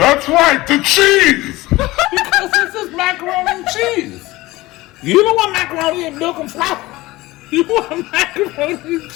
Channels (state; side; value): quieter; right; 19.3 dB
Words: right, the cheese! Because this is macaroni and cheese. You don't want macaroni and milk and flour. You want macaroni and